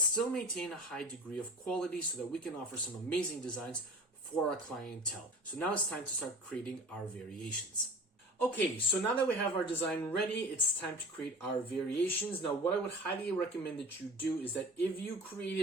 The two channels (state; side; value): normal; both; correlation 0.39